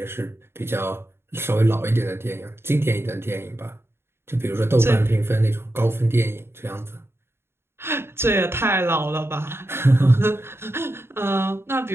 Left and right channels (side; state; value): left; late; 0.12 ms